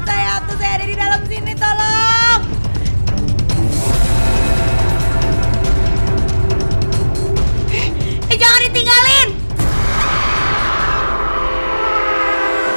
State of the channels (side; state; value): both; inverted; correlation -1.00